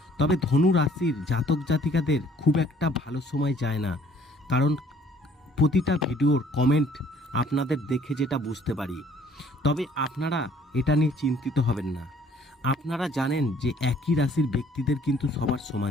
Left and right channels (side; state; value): both; normal; correlation 0.58